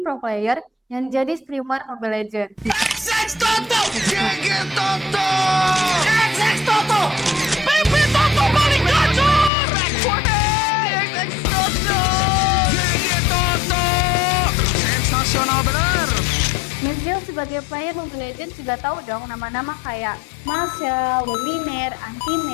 pro player yang jadi streamer Mobile Legends. XX Toto! GG Toto! XX Toto! PP Toto paling gacor! XX Toto! GG Toto! Sensasional bener! Mizzil sebagai player Mobile Legends juga tahu dong nama-nama kayak Marshall, Luminaire,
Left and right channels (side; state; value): right; drops out; at 9.5 s